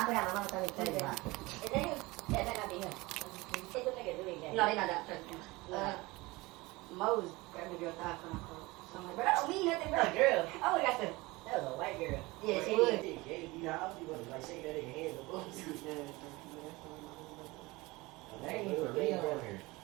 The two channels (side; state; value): left; quieter; 22.3 dB